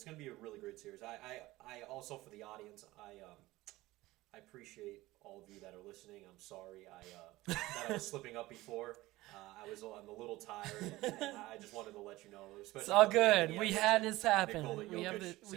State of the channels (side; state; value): left; quieter; 18.5 dB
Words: going to be a really great series. I also, for the audience, I appreciate all of you that are listening. I'm sorry that I was slipping up before. I'm a little tired, and I just wanted to let you know. It's all good. We had this happen. We